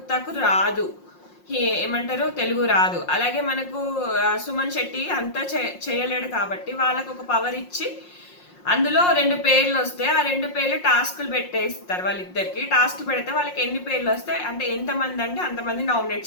రాదు, ఏమంటారు, తెలుగు రాదు. అలాగే మనకు సుమన్ శెట్టి అంతా చేయలేడు కాబట్టి వాళ్ళకు ఒక పవర్ ఇచ్చి అందులో 2 పేర్లు వస్తే ఆ 2 పేర్లు టాస్క్లు పెట్టేస్తారు. వాళ్ళిద్దరికి టాస్క్ పెడితే వాళ్ళకి ఎన్ని పేర్లు వస్తాయి అంటే ఎంతమంది అంటే అంతమంది నామినేట్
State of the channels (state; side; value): late; right; 5.6 ms